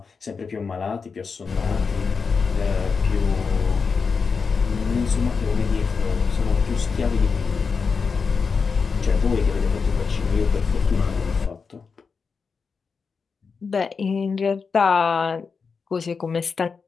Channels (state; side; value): quieter; right; 5.2 dB